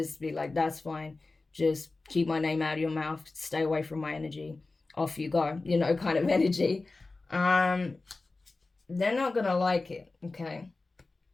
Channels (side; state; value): right; quieter; 3.5 dB